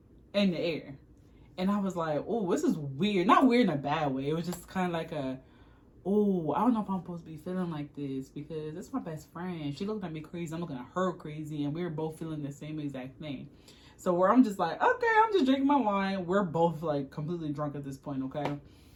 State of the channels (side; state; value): both; identical; correlation 1.00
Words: in the air. And I was like, oh, this is weird. Not weird in a bad way. It was just kind of like I don't know if I'm supposed to be feeling like this because it's my best friend. She looked at me crazy. I'm looking at her crazy. And we were both feeling the same exact thing. So where I'm just like, okay, I'm just drinking my wine. We're both like completely drunk at this point, okay?